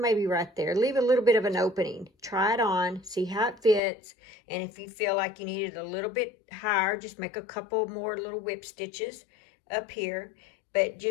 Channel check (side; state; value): right; drops out; at 3.8 s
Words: right there. Leave a little bit of an opening. Try it on, see how it fits, and if you feel like you need it a little bit higher, just make a couple more little whip stitches up here, but